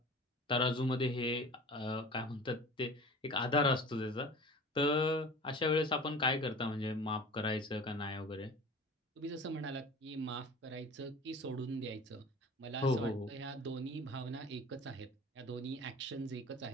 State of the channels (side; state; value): both; normal; correlation 0.40